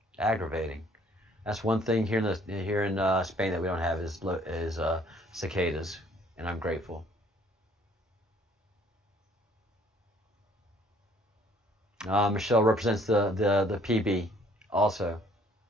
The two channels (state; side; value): normal; both; correlation 0.59